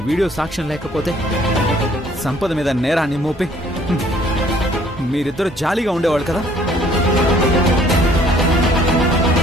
వీడియో సాక్ష్యం లేకపోతే సంపద మీద నేరాన్ని మోపి మీరిద్దరు జాలీగా ఉండేవాళ్ళు కదా.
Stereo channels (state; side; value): normal; both; correlation 0.59